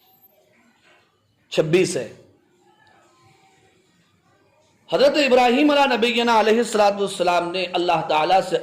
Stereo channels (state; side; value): identical; both; correlation 1.00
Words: 26 ہے۔ حضرت ابراہیم علیہ نبینا علیہ السلام نے اللہ تعالیٰ سے